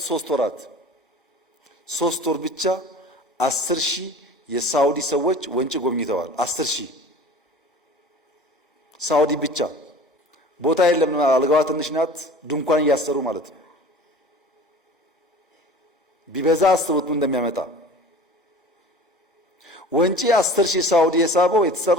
3 ወራት 3 ወር ብቻ 10,000 የሳውዲ ሰዎች ወንጪ ጎብኝተዋል። 10,000 ሳውዲ ብቻ። ቦታ የለም፣ አልጋዋ ትንሽ ናት። ድንኳን እያሰሩ ማለት ነው። ቢበዛ አስቡት ምን እንደሚያመጣ። ወንጪ 10,000 ሳውዲ የሳበው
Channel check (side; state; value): both; normal; correlation 0.41